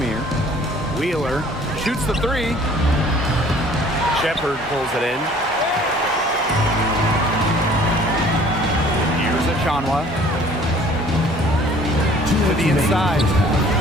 Wheeler shoots the 3. Shepard pulls it in. Here's a Shanwa. To the inside.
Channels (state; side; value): normal; both; correlation 0.53